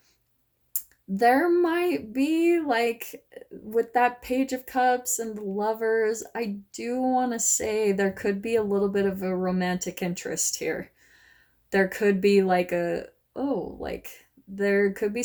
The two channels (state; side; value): identical; both; correlation 1.00